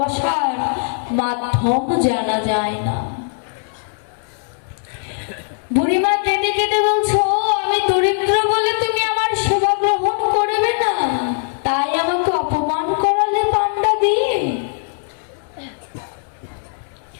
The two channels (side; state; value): right; silent; 66 dB below the other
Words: মাধ্যম জানা যায় না। বুড়িমা কেঁদে কেঁদে বলছো, আমি দরিদ্র বলে তুমি আমার সেবা গ্রহণ করবে না, তাই আমাকে অপমান